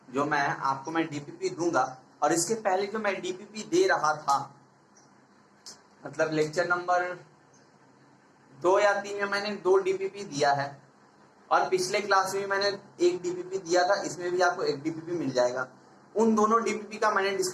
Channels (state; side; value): identical; both; correlation 1.00